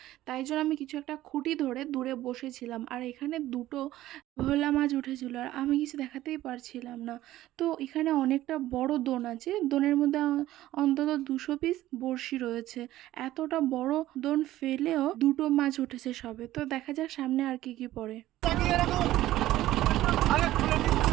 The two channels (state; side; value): quieter; left; 14.9 dB